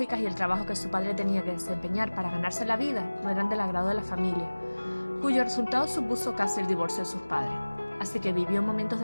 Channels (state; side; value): inverted; both; correlation -1.00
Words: y el trabajo que su padre tenía que desempeñar para ganarse la vida no eran del agrado de la familia, cuyo resultado supuso casi el divorcio de sus padres. Así que vivió momentos